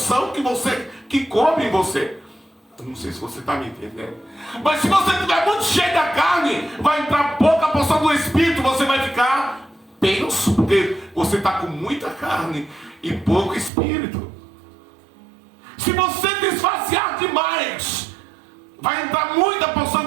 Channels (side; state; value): left; drops out; at 13.7 s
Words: que coube em você. Eu não sei se você está me entendendo. Mas se você estiver muito cheio da carne, vai entrar pouca porção do Espírito, você vai ficar tenso, porque você está com muita carne e pouco Espírito. Se você desvaziar demais, vai entrar muita porção